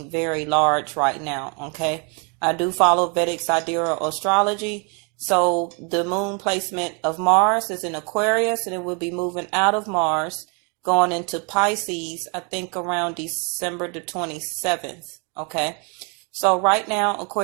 very large right now, okay? I do follow Vedic Astrology, so the moon placement of Mars is in Aquarius, and it will be moving out of Mars, going into Pisces, I think around December the 27th, okay? So right now,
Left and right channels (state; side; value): quieter; left; 34.9 dB